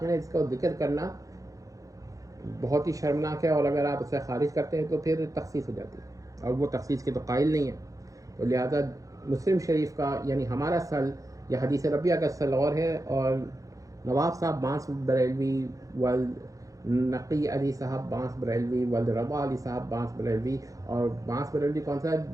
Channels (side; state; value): left; late; 0.16 ms